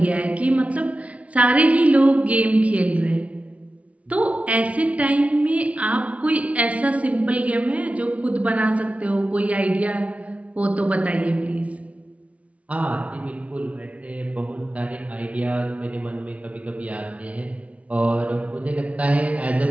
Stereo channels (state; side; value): late; left; 0.066 ms